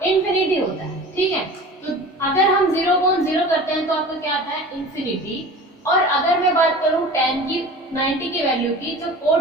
इंफिनिटी होता है। ठीक है, तो अगर हम 0/0 करते हैं तो आपका क्या आता है इंफिनिटी। और अगर मैं बात करूं tan की 90 की वैल्यू की, जो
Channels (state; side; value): normal; both; correlation 0.38